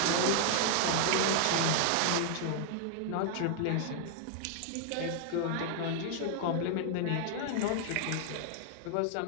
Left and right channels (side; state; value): both; different; correlation 0.00